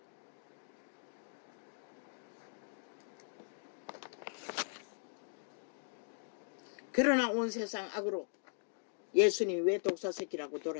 그러나 온 세상 악으로 예수님이 왜 독사새끼라고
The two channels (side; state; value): right; silent; digital silence